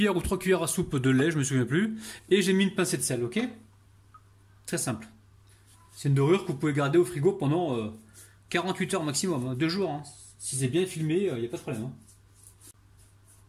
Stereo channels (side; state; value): both; identical; correlation 1.00